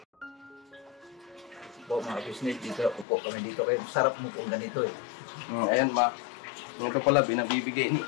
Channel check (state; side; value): drops out; right; at 3.1 s